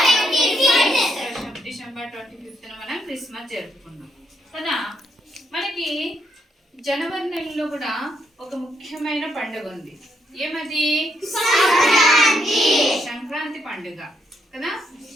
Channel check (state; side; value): normal; both; correlation 0.77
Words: డిసెంబర్ 25న మనం క్రిస్మస్ జరుపుకున్నాం కదా. మనకి జనవరి నెలలో కూడా ఒక ముఖ్యమైన పండుగ ఉంది. ఏమది? సంక్రాంతి పండుగ కదా.